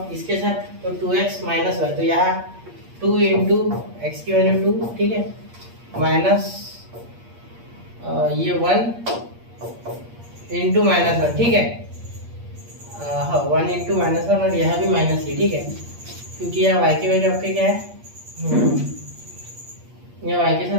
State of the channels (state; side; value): late; left; 8.5 ms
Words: इसके साथ तो 2x माइनस y, तो यहाँ 2 इंटू एक्स की वैल्यू 2, ठीक है, माइनस ये 1 इंटू -1, ठीक है। हाँ 1 इंटू -1 और यहाँ भी माइनस ही, ठीक है, क्योंकि यहाँ y की वैल्यू आपके क्या है, यहाँ y के